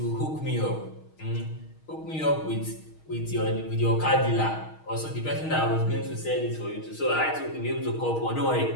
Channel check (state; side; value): late; right; 6.4 ms